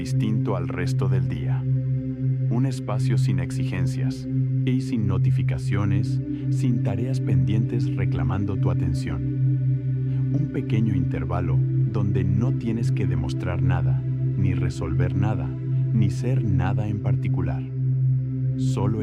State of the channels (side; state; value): both; identical; correlation 1.00